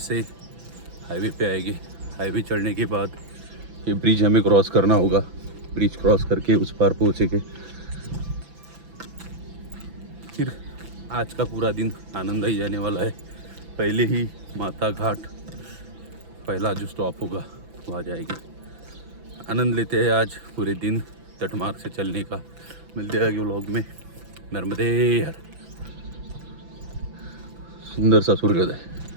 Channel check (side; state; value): left; late; 6.0 ms